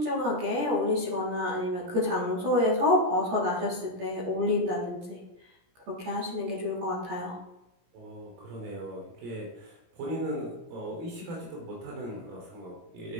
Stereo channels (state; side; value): late; left; 17 ms